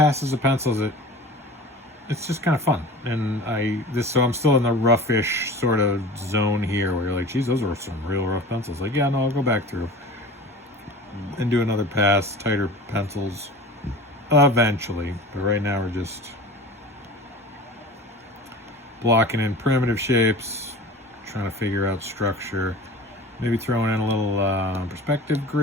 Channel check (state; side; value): normal; both; correlation 0.37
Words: of pencils. It's just kind of fun. And so I'm still in the roughish sort of zone here where you're like, geez, those are some real rough pencils. Like, yeah, no, I'll go back through and do another pass, tighter pencils, eventually. But right now we're just blocking in primitive shapes, trying to figure out structure. Maybe throwing in a little perspective